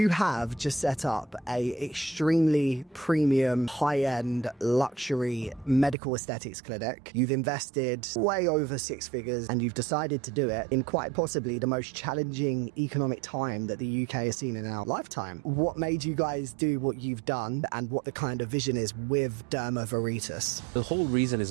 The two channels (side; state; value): left; drops out; at 6.0 s